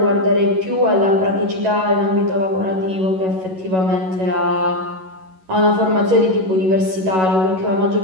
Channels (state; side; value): late; left; 11 ms